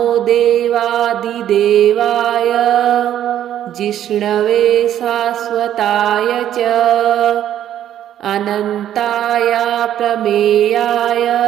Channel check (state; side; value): quieter; left; 11.1 dB